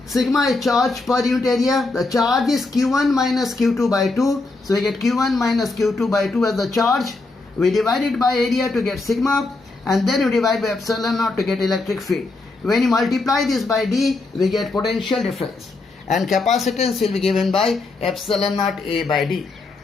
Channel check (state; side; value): quieter; right; 3.4 dB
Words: Sigma is charge per unit area. The charge is Q1 minus Q2 by 2. So we get Q1 minus Q2 by 2 as the charge. We divide it by area to get sigma, and then we divide by epsilon naught to get electric field. When you multiply this by D, we get potential difference. And capacitance will be given by epsilon naught A by D.